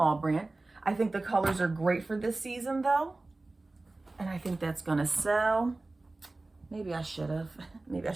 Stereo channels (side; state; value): left; quieter; 3.1 dB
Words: brand. I think the colors are great for this season though. And I think that's gonna sell. Maybe I should have. Maybe I